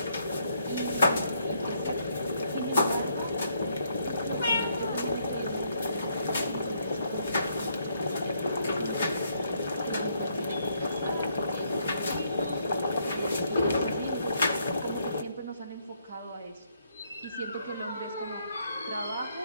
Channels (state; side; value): inverted; both; correlation -0.72